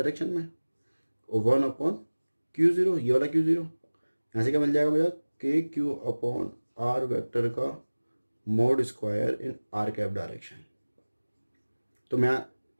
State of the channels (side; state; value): both; inverted; correlation -1.00